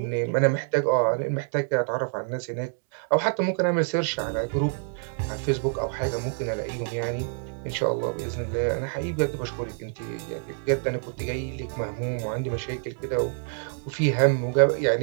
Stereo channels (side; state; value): left; silent; 57 dB below the other